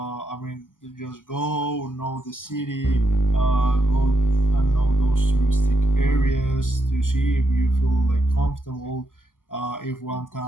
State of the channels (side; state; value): right; late; 0.88 ms